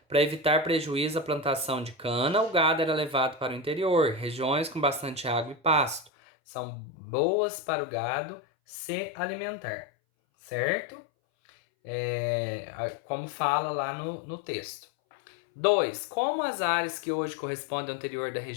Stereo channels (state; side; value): drops out; right; at 6.1 s